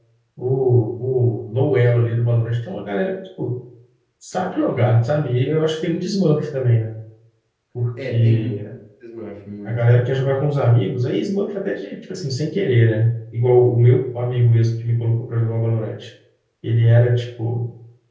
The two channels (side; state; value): both; identical; correlation 1.00